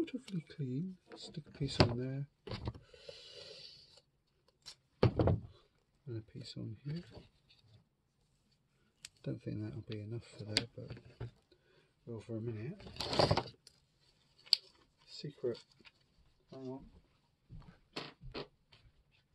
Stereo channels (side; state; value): both; identical; correlation 1.00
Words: clean. Stick a piece on there, and a piece on here. Don't think that'll be enough for there, but well, for a minute. Secret. Hang on.